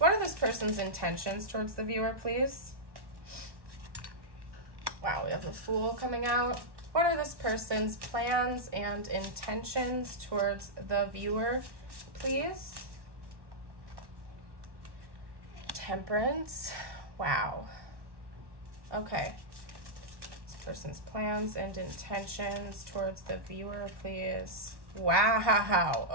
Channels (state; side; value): late; left; 1.1 ms